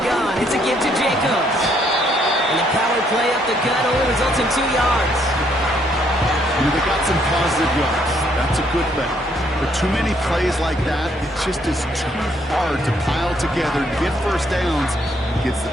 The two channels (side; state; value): both; normal; correlation 0.69